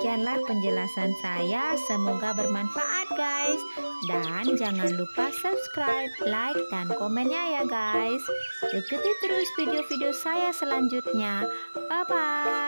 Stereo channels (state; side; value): inverted; both; correlation -1.00